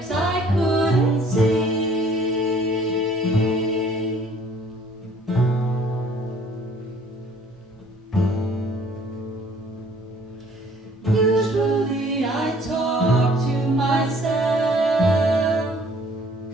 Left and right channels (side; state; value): both; normal; correlation 0.57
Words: I couldn't see. Usually I talk to myself,